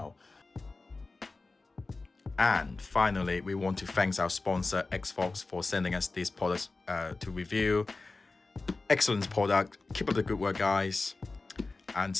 And finally, we want to thank our sponsor ExFog for sending us these products to review. Excellent product. Keep up the good work, guys, and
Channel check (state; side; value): quieter; right; 3.6 dB